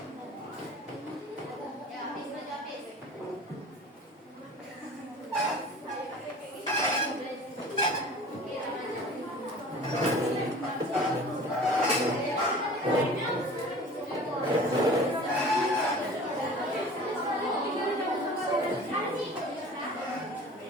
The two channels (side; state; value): both; normal; correlation 0.42